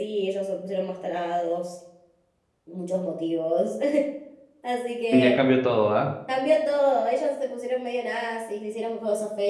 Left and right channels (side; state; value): both; identical; correlation 1.00